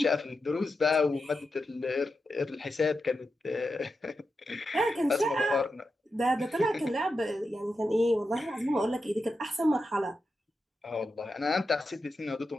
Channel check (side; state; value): both; normal; correlation 0.88